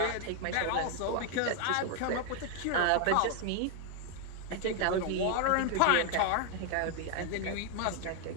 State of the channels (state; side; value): different; both; correlation 0.00